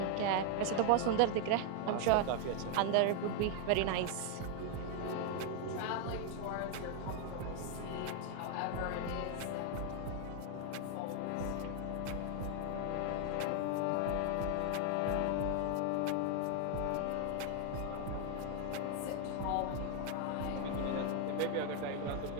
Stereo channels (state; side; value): different; both; correlation 0.00